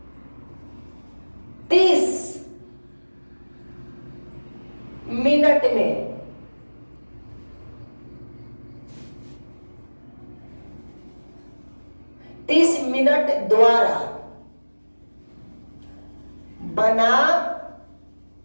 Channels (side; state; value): both; inverted; correlation -1.00